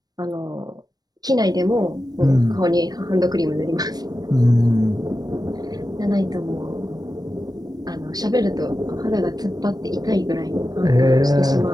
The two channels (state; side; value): late; left; 0.19 ms